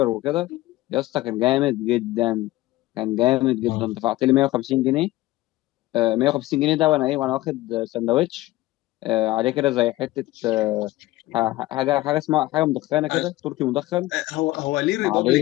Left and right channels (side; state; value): right; quieter; 17.8 dB